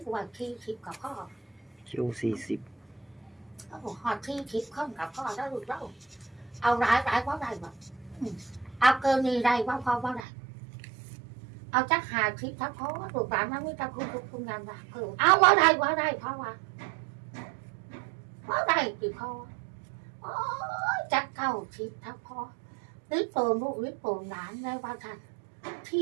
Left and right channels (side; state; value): left; drops out; at 10.2 s